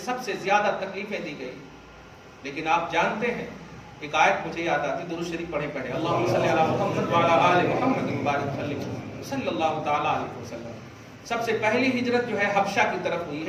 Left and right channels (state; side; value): identical; both; correlation 1.00